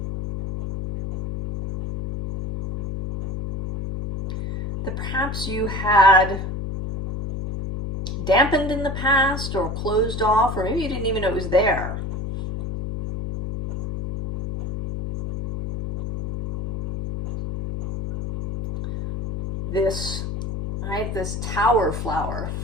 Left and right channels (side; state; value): left; noise; hum, 5 dB below the sound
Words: That perhaps you had dampened in the past or closed off, or maybe you didn't even know it was there. This, right, this tower flower